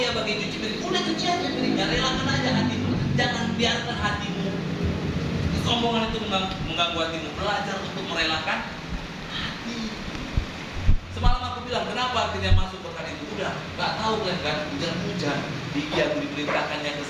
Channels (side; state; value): both; identical; correlation 1.00